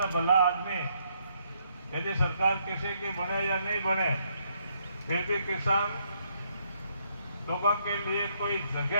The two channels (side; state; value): both; inverted; correlation -0.72